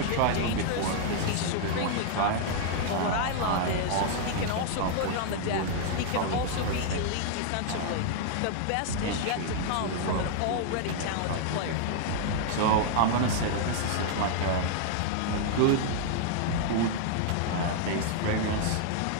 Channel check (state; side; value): different; both; correlation 0.00